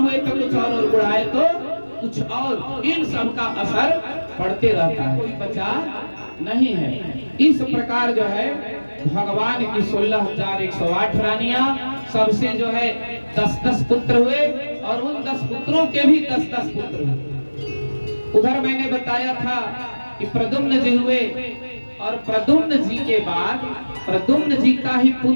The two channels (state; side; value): inverted; both; correlation -1.00